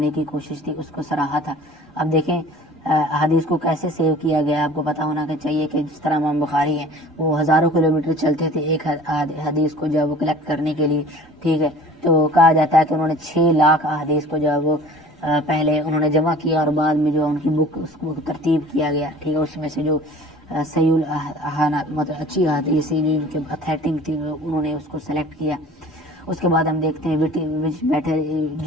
کی کوشش تھی اس کو سراہا تھا. اب دیکھیں احادیث کو کیسے سیو کیا گیا, آپ کو پتا ہونا چاہیے کہ جس طرح امام بخاری ہیں وہ ہزاروں کلومیٹر چلتے تھے ایک حدیث کو جو ہے وہ کلیکٹ کرنے کے لیے. ٹھیک ہے, تو کہا جاتا ہے کہ انہوں نے 6 لاکھ احادیث کو جو ہے وہ پہلے انہوں نے جمع کیا اور بعد میں جو ان کی بک اس کو ترتیب کیا گیا. ٹھیک ہے, اس میں سے جو صحیح مطلب اچھی احادیث جو ان کے اتھینٹک تھی انہوں نے اس کو سلیکٹ کیا. اس کے بعد ہم دیکھتے ہیں وچ بیٹھے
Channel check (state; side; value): normal; both; correlation 0.45